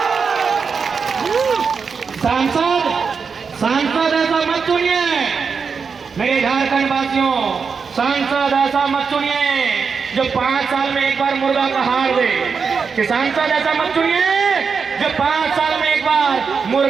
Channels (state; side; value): quieter; left; 5.6 dB